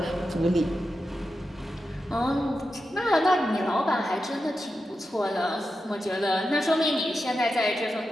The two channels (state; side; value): normal; both; correlation 0.90